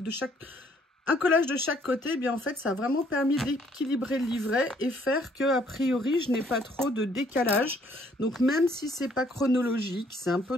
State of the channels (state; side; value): normal; both; correlation 0.64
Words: un collage de chaque côté, eh bien en fait, ça a vraiment permis d'équilibrer le livret et faire que, a priori, je n'ai pas trop de décalage. Donc, même si c'est pas chronologique, c'est un peu